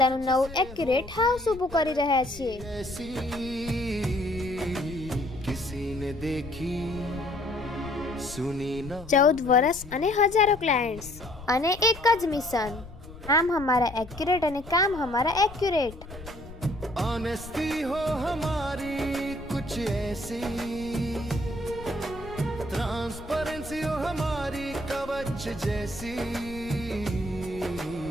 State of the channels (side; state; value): left; noise; rumble, 15 dB below the sound